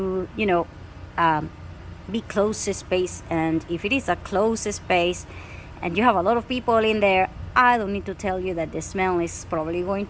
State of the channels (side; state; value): both; identical; correlation 1.00